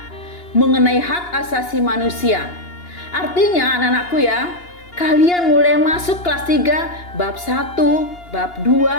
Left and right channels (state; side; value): late; right; 2.8 ms